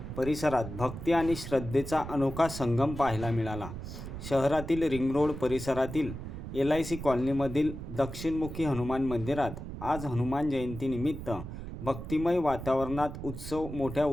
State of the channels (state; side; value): noise; right; rumble, 9 dB below the sound